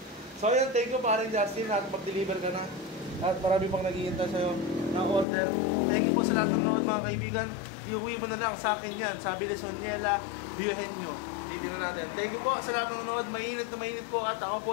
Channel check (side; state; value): right; drops out; at 5.2 s